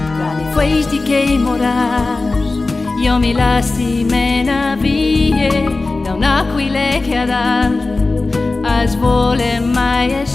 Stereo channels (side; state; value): right; quieter; 3.4 dB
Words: Tra le festi che morars, io mi lasci mena vie, da un'aquile che ad as vole